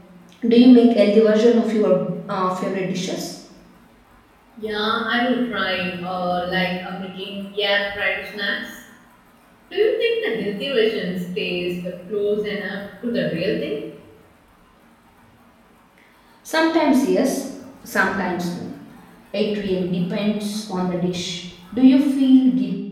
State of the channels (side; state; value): both; identical; correlation 1.00